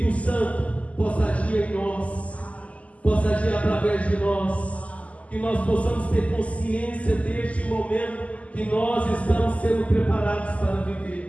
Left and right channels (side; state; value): right; late; 0.068 ms